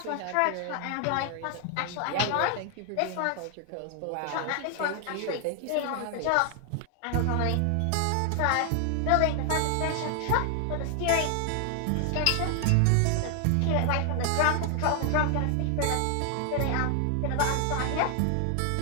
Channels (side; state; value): both; different; correlation 0.00